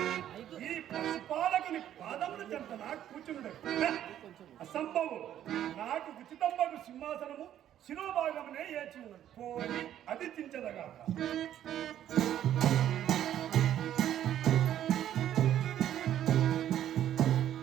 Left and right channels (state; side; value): quieter; left; 11.2 dB